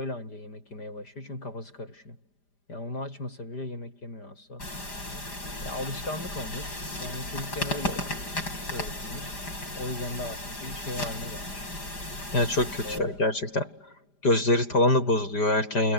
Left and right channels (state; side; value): late; right; 5.0 ms